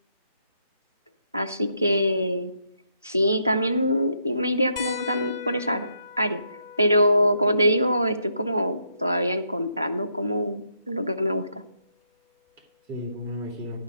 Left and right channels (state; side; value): inverted; both; correlation -0.76